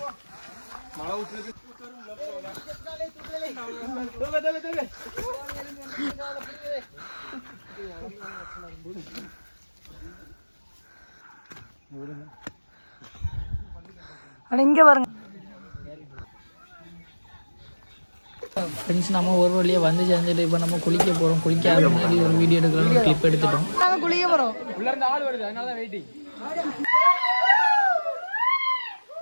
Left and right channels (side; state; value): both; inverted; correlation -1.00